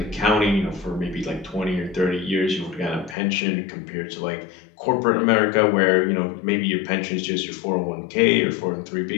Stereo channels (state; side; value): drops out; right; at 3.2 s